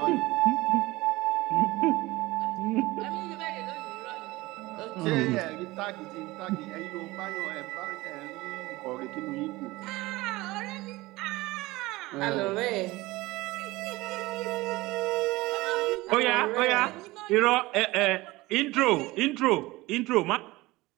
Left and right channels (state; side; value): quieter; left; 20.2 dB